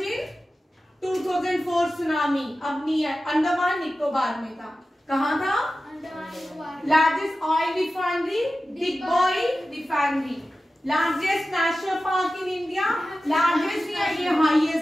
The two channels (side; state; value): both; normal; correlation 0.94